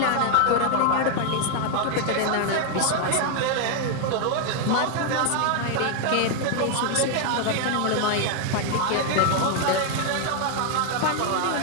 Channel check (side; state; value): both; different; correlation 0.00